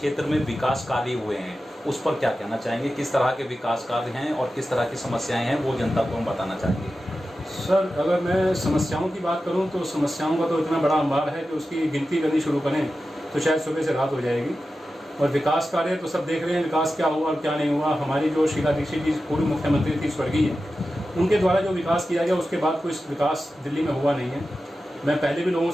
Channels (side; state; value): both; normal; correlation 0.93